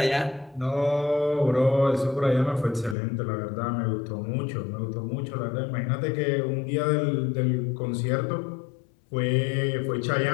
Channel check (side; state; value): right; drops out; at 3.0 s